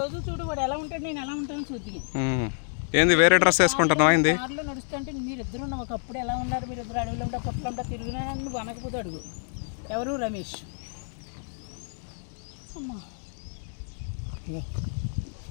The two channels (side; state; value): right; silent; digital silence